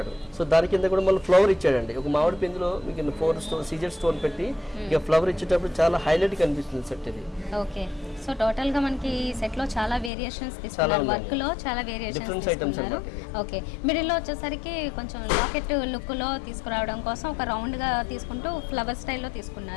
సో దాని కింద కూడా మళ్ళీ ఫ్లవర్ ఇచ్చాడండి. ఒక మామిడి పిందులో మీకు 4 సీజెడ్ స్టోన్ పెట్టి ఇక ఫ్లవర్ ఇచ్చేటప్పుడు చాలా హైలైట్ కనిపిస్తుంది సెట్ ఇది. ఓకే, సో టోటల్ గా మనకి ఈ సెట్ లో చాలా వేరియేషన్స్ తీసుకున్నారు, వర్క్ లో చాలా వేరియేషన్స్ తీసుకున్నారు. ఓకే, మిడిల్ లో వచ్చేసరికి కొంచెం లాకెట్ లుక్ లో తీసుకురావడం కోసం ఒక రౌండ్ గా తీసుకుంటూ ఫ్లవర్ స్టైల్లో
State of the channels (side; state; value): right; drops out; at 10.1 s